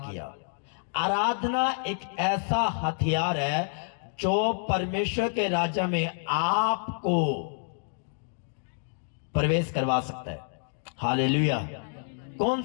आराधना एक ऐसा हथियार है जो परमेश्वर के राज्य में आपको प्रवेश करवा सकता है। हालेलुया। कौन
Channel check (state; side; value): silent; right; 59 dB below the other